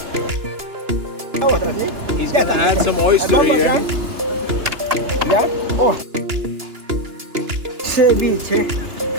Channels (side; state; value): left; late; 2.9 ms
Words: He's gonna add some oyster here. ¿Ya? Oh. Ceviche,